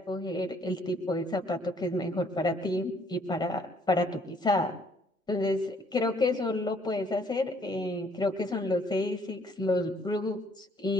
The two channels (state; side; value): normal; both; correlation 0.64